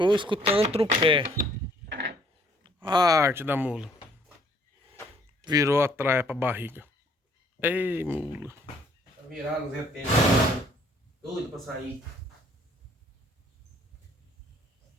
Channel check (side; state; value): both; normal; correlation 0.62